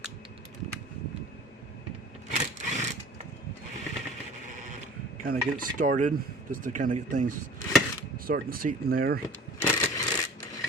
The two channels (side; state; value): both; normal; correlation 0.44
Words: Kind of get it started, just to kind of get things starting to seat in there.